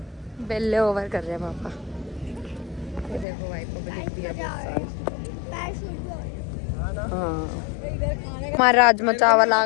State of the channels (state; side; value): drops out; right; at 3.2 s